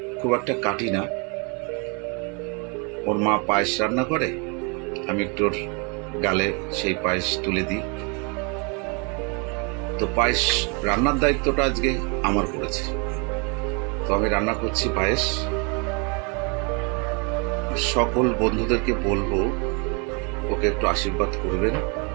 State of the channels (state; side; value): quieter; left; 33.5 dB